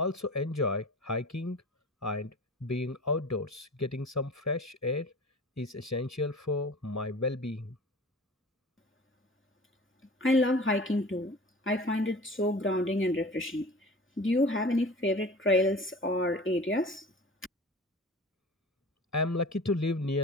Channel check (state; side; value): normal; both; correlation 0.39